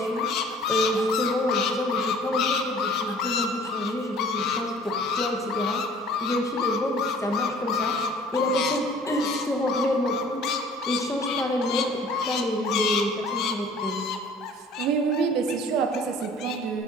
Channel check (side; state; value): both; normal; correlation 0.51